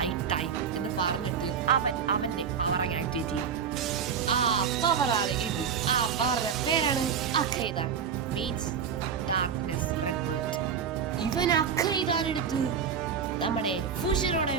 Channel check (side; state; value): left; quieter; 7.1 dB